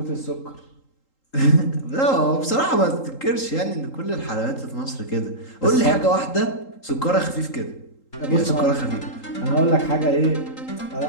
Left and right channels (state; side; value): late; right; 3.8 ms